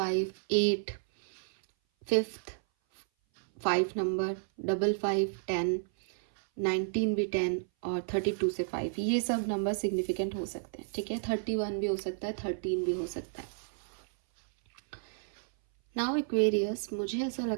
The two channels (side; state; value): left; silent; 56 dB below the other